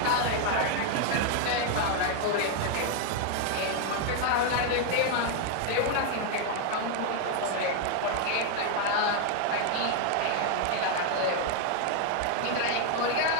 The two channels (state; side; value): different; both; correlation 0.00